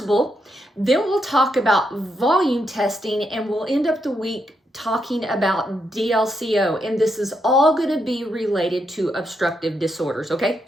Then we'll talk about volume testing, and we'll end up the week talking about DLCO, and this is all going to be related to obstructive disorders, okay?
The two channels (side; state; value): both; normal; correlation 0.80